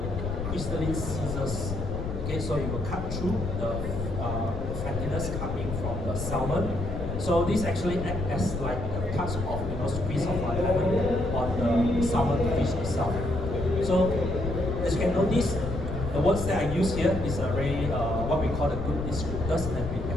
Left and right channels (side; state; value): left; noise; rumble, 5 dB below the sound